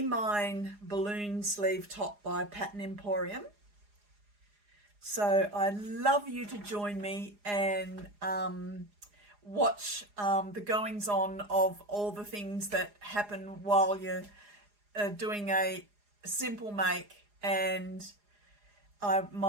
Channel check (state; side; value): late; left; 4.9 ms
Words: Mine balloon sleeve top by Pattern Emporium. So I'd love you to join me and watch the goings on of all the things that happen while you're doing a simple make. And